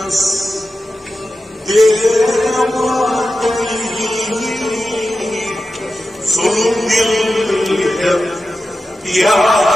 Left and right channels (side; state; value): both; normal; correlation 0.92